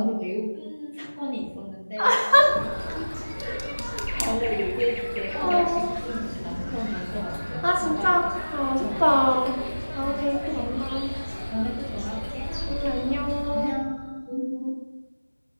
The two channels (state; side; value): inverted; both; correlation -1.00